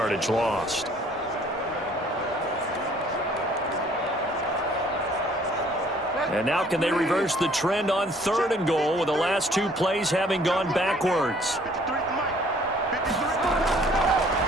lost. And now can they reverse the trend on 3rd and goal with the last 2 plays having gone backwards?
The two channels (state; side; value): normal; both; correlation 0.58